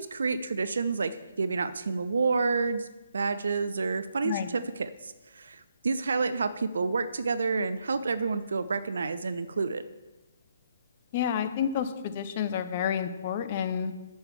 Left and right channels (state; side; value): inverted; both; correlation -0.75